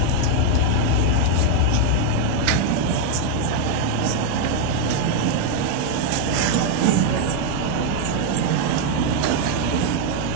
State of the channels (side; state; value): both; different; correlation 0.01